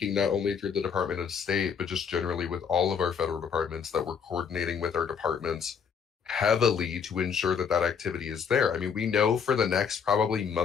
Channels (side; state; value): right; quieter; 6.8 dB